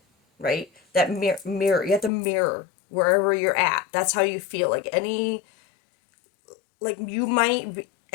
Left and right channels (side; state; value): right; drops out; at 2.1 s